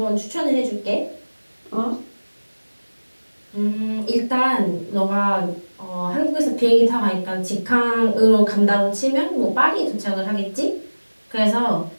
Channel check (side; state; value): both; inverted; correlation -1.00